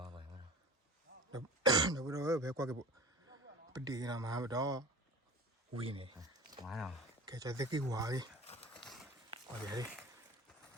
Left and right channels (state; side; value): normal; both; correlation 0.38